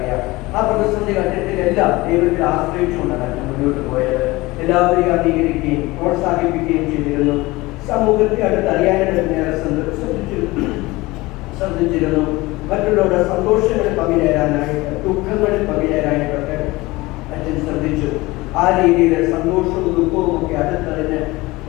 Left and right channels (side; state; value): right; quieter; 21.0 dB